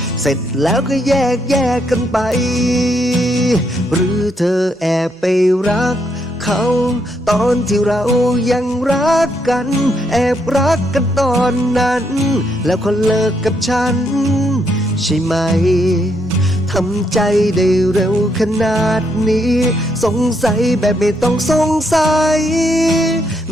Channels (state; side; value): normal; both; correlation 0.76